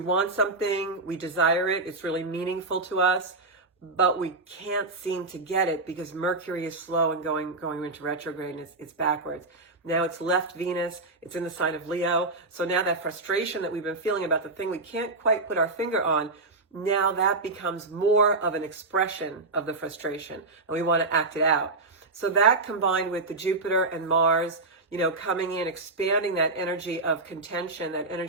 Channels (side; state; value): left; quieter; 3.3 dB